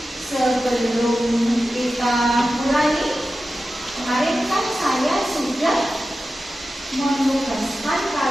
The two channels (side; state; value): both; normal; correlation 0.93